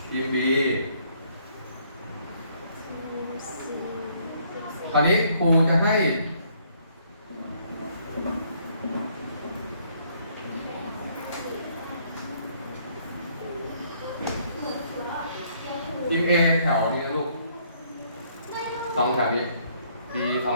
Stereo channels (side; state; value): both; inverted; correlation -0.66